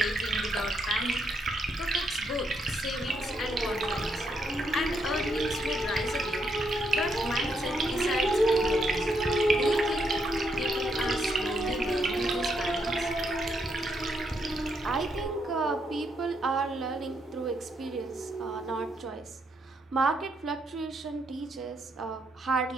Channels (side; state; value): both; normal; correlation 0.77